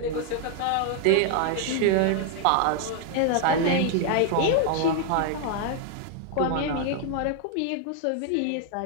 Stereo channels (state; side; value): different; both; correlation 0.00